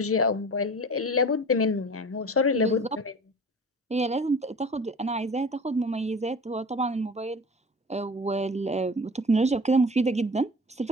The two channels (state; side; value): normal; both; correlation 0.39